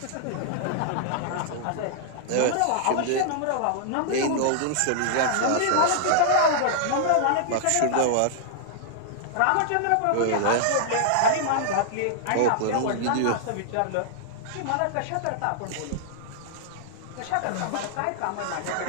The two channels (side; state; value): both; different; correlation -0.01